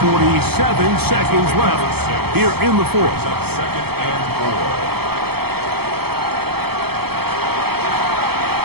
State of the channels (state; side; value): late; left; 0.96 ms